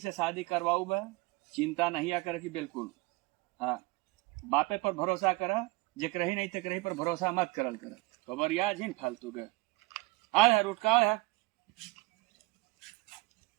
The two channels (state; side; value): quieter; left; 22.7 dB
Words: शादी करवाऊ बा। चिंता नहीं आ करे कि बिल्कुल। हाँ बापे पर भरोसा कर, जेकर ही नहीं तेकर ही पर भरोसा मत करल कर। खबर याद ही फालतू के आ रुटका है।